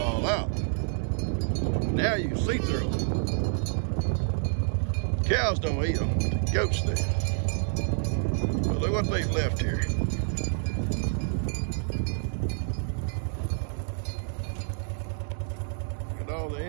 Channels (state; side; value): silent; left; 59 dB below the other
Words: all out. Now you can see through them. Cows don't eat them, but the goats do. But look what they've left here. Look at all the